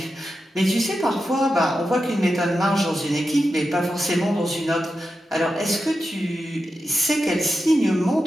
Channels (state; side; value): normal; both; correlation 0.90